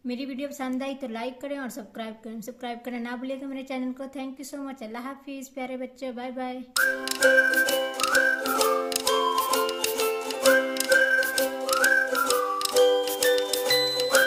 मेरी वीडियो पसंद आई तो लाइक करें और सब्सक्राइब करना ना भूलिएगा मेरे चैनल को। Thank you so much. अल्लाह हाफिज़ प्यारे बच्चों, बाय बाय।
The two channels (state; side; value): identical; both; correlation 1.00